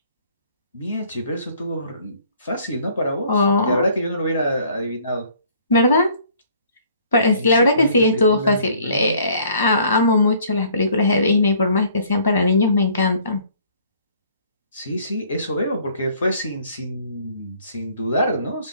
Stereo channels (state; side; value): inverted; both; correlation -0.58